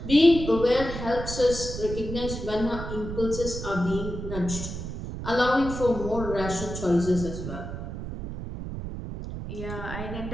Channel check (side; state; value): right; noise; rumble, 7 dB below the sound